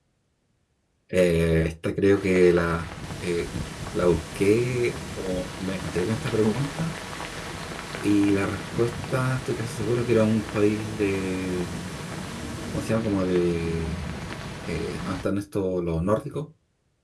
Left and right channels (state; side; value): identical; both; correlation 1.00